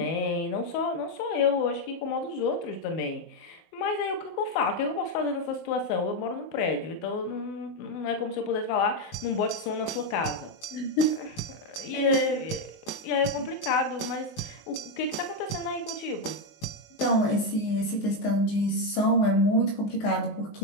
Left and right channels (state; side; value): late; right; 19 ms